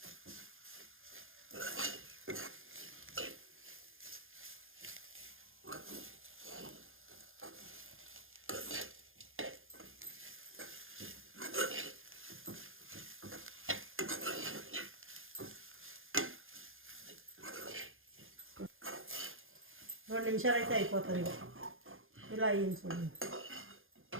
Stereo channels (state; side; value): late; left; 0.60 ms